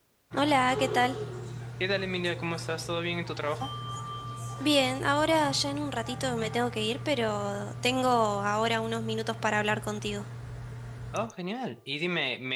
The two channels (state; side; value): identical; both; correlation 1.00